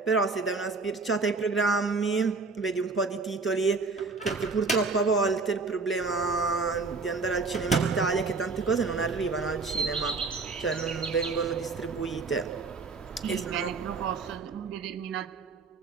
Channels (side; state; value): left; quieter; 4.1 dB